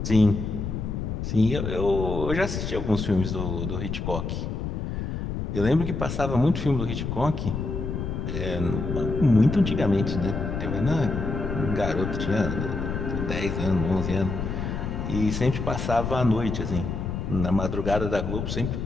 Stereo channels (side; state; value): left; noise; rumble, 3 dB below the sound